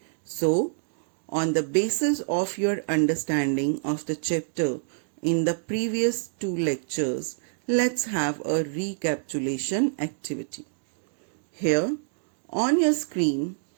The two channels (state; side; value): silent; left; digital silence